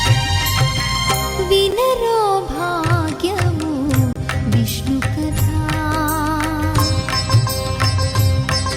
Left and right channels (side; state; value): both; identical; correlation 1.00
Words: వినరో భాగ్యము విష్ణు కథా,